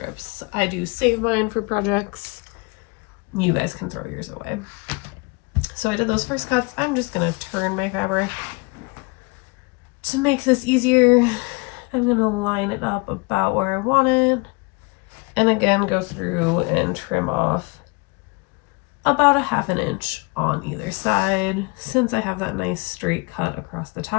I do save mine for projects. You guys can throw yours away. So I did those first cuts. I'm just going to turn my fabric. To make this easier, I'm going to line it up about where I want it. And again, go through and trim off about a ½ inch on either side. Since I have that nice straight cut across the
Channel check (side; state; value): right; quieter; 28.5 dB